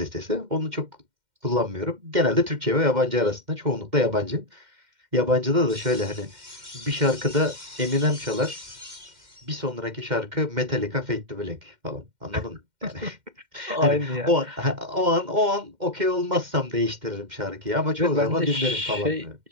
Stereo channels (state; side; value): late; left; 2.1 ms